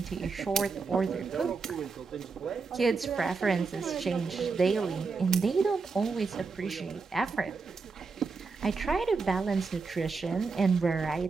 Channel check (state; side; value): quieter; left; 4.6 dB